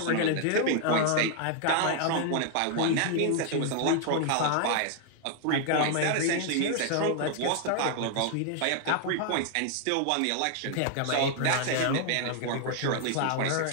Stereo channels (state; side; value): different; both; correlation 0.00